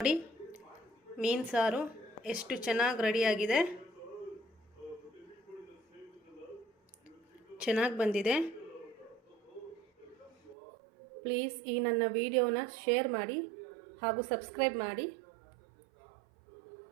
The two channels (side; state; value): left; drops out; at 10.6 s